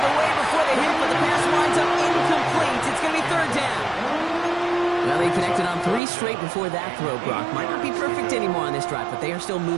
away before the hit, but the pass winds up incomplete. It's going to be 3rd down. Well, they connected on 3 straight before that throw, Brock. Might not be perfect anymore on this drive, but they are still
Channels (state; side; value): drops out; left; at 6.0 s